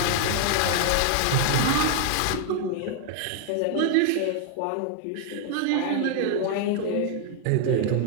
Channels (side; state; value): both; different; correlation 0.00